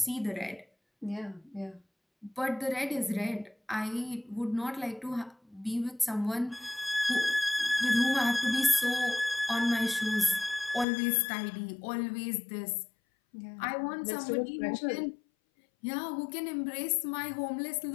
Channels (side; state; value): right; drops out; at 10.9 s